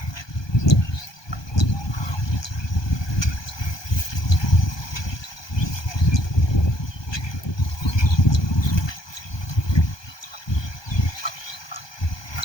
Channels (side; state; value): right; late; 1.2 ms